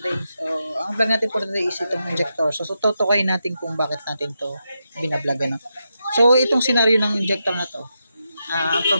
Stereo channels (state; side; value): inverted; both; correlation -0.86